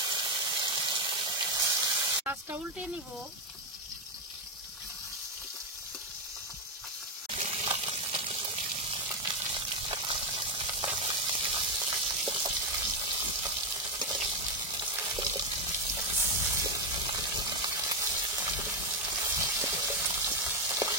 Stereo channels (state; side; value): normal; both; correlation 0.06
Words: মাছটা উল্টে নিব।